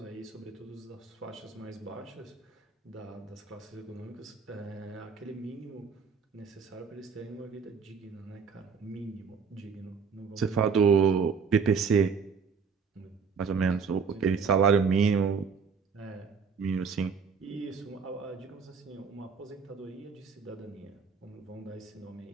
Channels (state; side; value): quieter; left; 5.8 dB